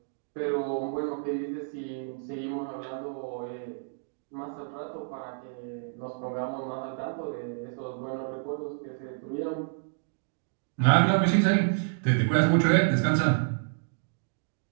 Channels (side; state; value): left; silent; digital silence